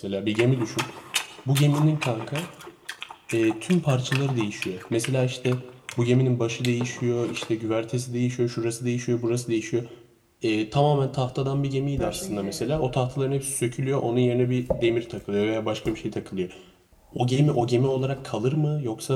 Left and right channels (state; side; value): identical; both; correlation 1.00